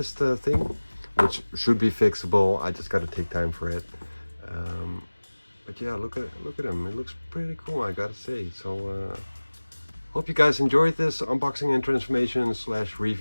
thing, which should be fixable. I just gotta take time for it. But yeah, look at him. It looks pretty cool, I gotta say. So hope you guys enjoyed this unboxing and transformation /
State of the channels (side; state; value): both; inverted; correlation -1.00